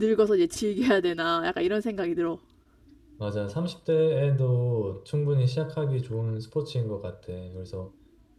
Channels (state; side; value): identical; both; correlation 1.00